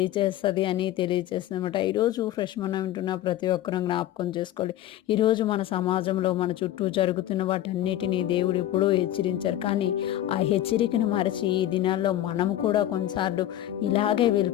అని తెలియజేస్తుందన్నమాట. ఈరోజు ఫ్రెష్ మనం వింటున్న ప్రతి ఒక్కరూ జ్ఞాపకం చేసుకోవాలి. ఈరోజు మన సమాజంలో మన చుట్టూ జరుగుతున్న వాటన్నిటినీ దేవుడు ఎప్పుడూ హెచ్చరించారు. కానీ ఆ హెచ్చరికను మరచి ఈ దినాల్లో మనం కూడా కొన్నిసార్లు ఇలాగే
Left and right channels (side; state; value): right; quieter; 13.0 dB